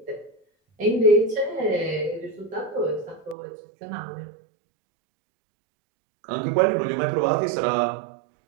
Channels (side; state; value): left; drops out; at 3.4 s